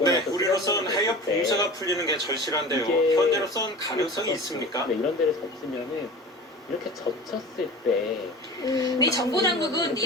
우리로선 해협 봉쇄가 풀리는 게 절실한데요. 현재로선 가능성이 있습니까? 이런 데를 젖으면은 이렇게 젖혔을 때 미 정부 당국은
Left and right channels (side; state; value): both; normal; correlation 0.36